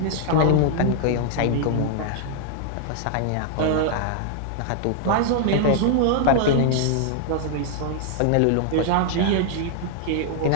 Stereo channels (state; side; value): different; both; correlation -0.01